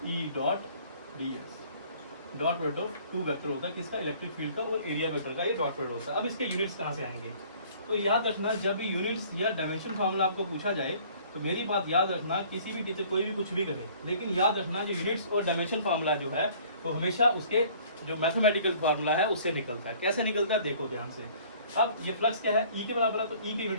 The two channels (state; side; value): inverted; both; correlation -0.54